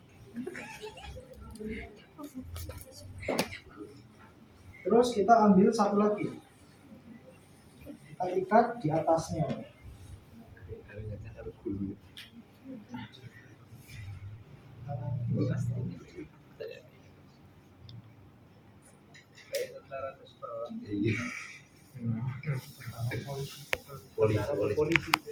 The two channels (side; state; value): both; identical; correlation 1.00